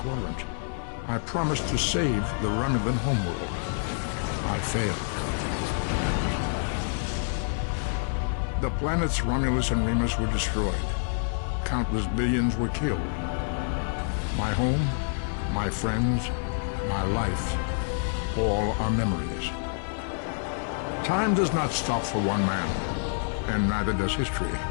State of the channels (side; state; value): right; silent; digital silence